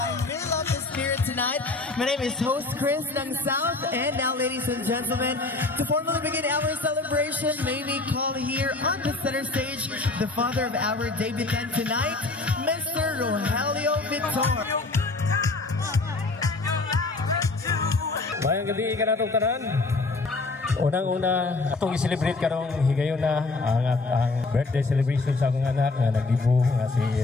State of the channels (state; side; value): quieter; right; 3.4 dB